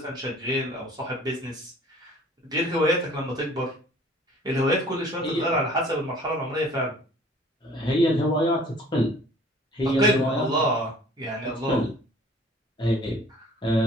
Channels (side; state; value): both; normal; correlation 0.52